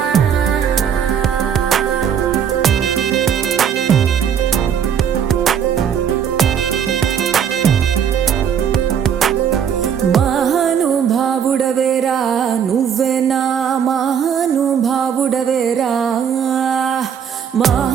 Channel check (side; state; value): left; quieter; 8.1 dB